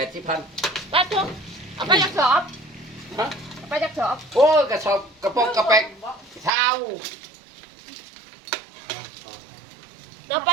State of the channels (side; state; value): left; drops out; at 6.5 s